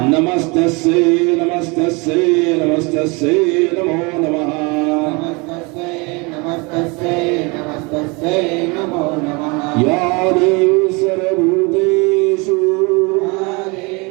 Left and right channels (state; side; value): quieter; left; 28.2 dB